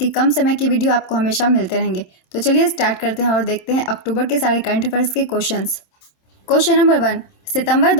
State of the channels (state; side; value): late; right; 27 ms